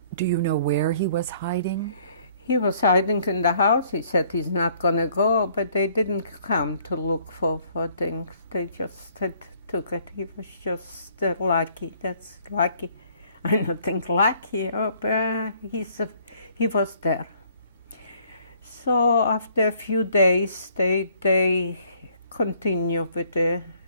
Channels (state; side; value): inverted; both; correlation -0.61